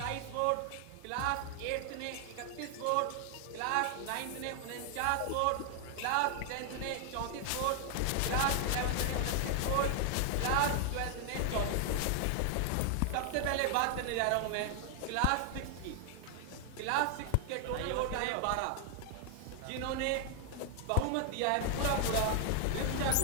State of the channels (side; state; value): both; different; correlation 0.00